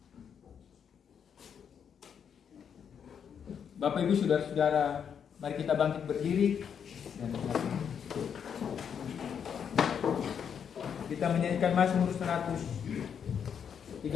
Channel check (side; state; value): right; quieter; 7.6 dB